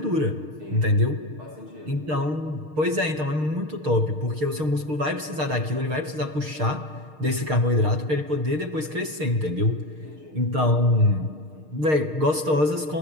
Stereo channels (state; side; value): late; left; 6.5 ms